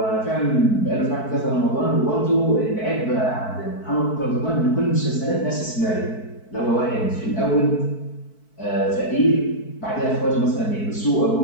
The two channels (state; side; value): late; right; 4.6 ms